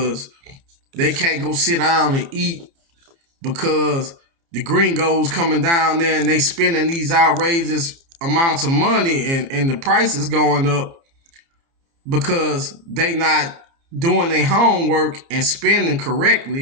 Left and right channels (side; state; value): left; late; 30 ms